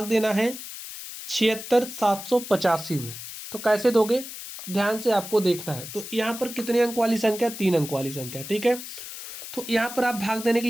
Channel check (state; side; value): noise; left; hiss, 11 dB below the sound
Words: देना है 76785 में। तो कैसे दोगे? ध्यान से आपको देखना है। तो यहाँ पर कितने अंक वाली संख्या? 3 अंक वाली संख्या। ठीक है, तो यहाँ पर आप भाग देने के